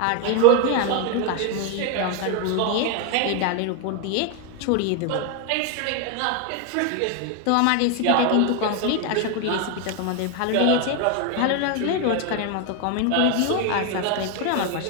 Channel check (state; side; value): different; both; correlation 0.01